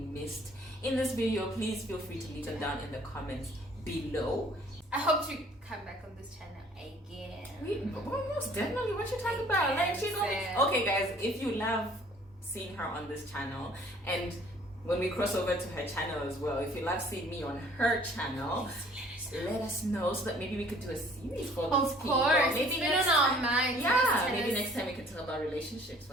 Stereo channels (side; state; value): both; normal; correlation 0.55